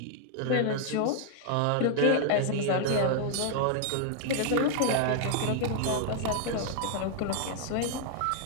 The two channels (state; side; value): different; both; correlation -0.01